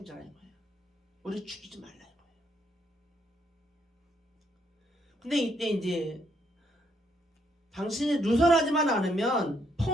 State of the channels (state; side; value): normal; both; correlation 0.73